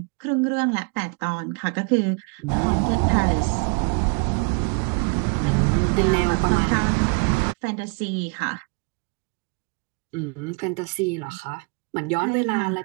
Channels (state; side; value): quieter; left; 34.5 dB